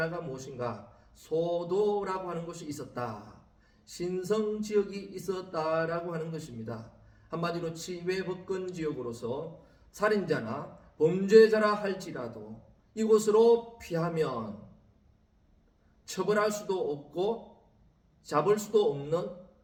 무엇인가? 소도라고 하는 것이 있었다. 신성지역이 있었다라고 하는 것입니다. 한마디로 치외법권 지역으로서 살인자나 범죄자라 할지라도 이곳으로 피하면 처벌할 수도 없고 잡을 수도 없는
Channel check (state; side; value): identical; both; correlation 1.00